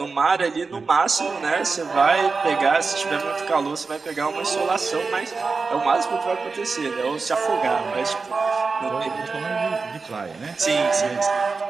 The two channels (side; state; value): left; quieter; 4.4 dB